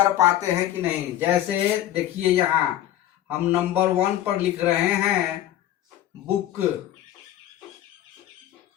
पाते हैं कि नहीं। जैसे देखिए, यहाँ हम नंबर 1 पर लिख रहे हैं बुक,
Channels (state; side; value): quieter; right; 12.8 dB